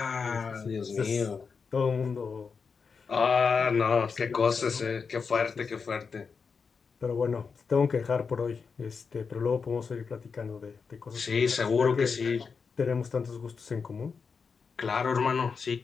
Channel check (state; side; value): quieter; right; 5.4 dB